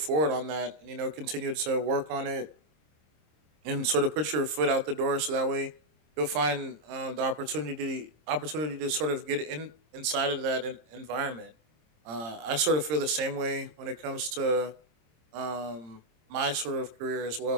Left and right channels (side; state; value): left; late; 26 ms